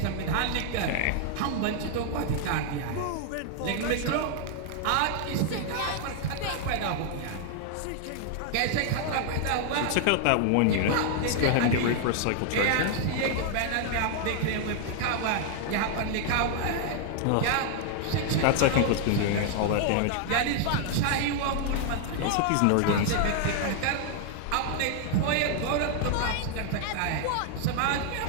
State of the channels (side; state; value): both; different; correlation 0.00